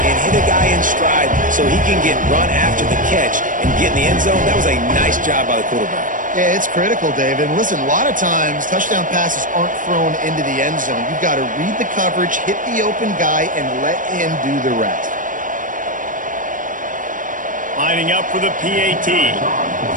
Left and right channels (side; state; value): left; late; 0.38 ms